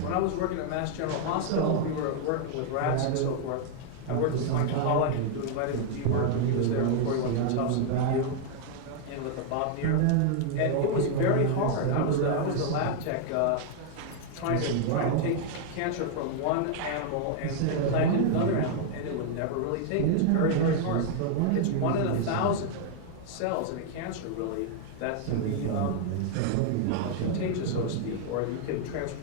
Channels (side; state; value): both; different; correlation 0.00